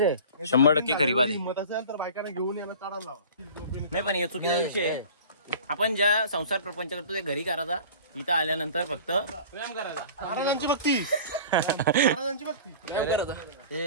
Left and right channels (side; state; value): both; inverted; correlation -0.41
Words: 100% खरी बात आहे. हिंमत असेल तर बायकांना घेऊन यायला चढायला लावा. नाही पण हे चुकीचा विषय आहे. आपण ज्या संसार प्रपंच करतो ते घरी करायचा इथं आल्यानंतर फक्त व्यायाम करायला महाराजांची भक्ती महाराजांची भक्ती व्यायाम